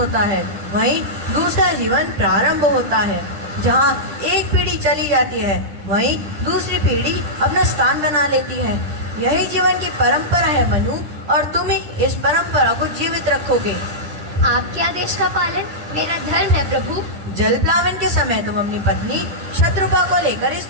है, वहीं दूसरा जीवन प्रारंभ होता है। जहाँ एक पीढ़ी चली जाती है, वहीं दूसरी पीढ़ी अपना स्थान बना लेती है। यही जीवन की परंपरा है मनु, और तुम ही इस परंपरा को जीवित रखोगे। आपके आदेश का पालन मेरा धर्म है प्रभु। जल प्लावन के समय तुम अपनी पत्नी शत्रुपा को लेकर इस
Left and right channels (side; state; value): left; late; 10 ms